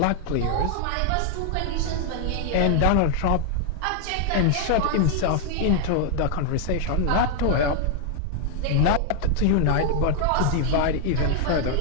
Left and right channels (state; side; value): different; both; correlation 0.00